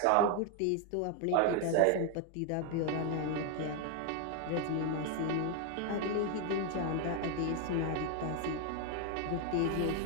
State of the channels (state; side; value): different; both; correlation 0.00